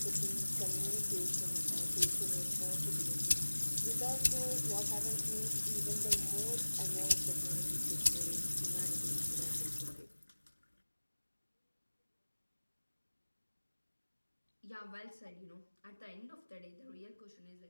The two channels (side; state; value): both; inverted; correlation -1.00